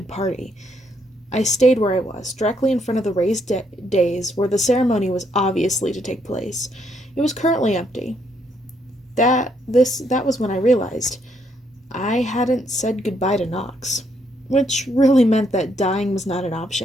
party. I stayed where I was, directly in front of the raised dais where the ceremony was obviously to take place. It was currently empty. That was when I realized I hadn't said goodbye to Knox, which really meant that dying was not an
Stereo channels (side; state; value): both; normal; correlation 0.73